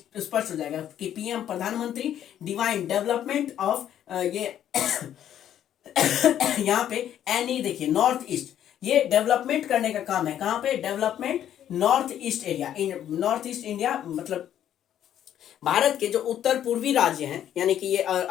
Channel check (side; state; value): right; quieter; 10.7 dB